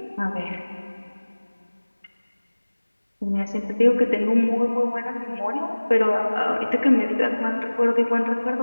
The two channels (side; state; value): both; inverted; correlation -1.00